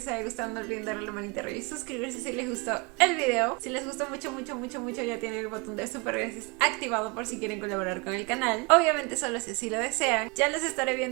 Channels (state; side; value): quieter; left; 28.0 dB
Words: haya gustado. No olviden darle la manita arriba y suscribirse si les gustó el video. Si les gustó mucho, ya tienen el botón de super gracias activado por si quieren colaborar con el canal. Obviamente solo si así lo desean. Ya los estaré